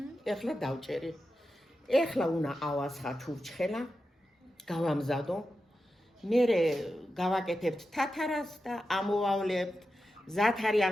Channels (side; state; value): both; normal; correlation 0.90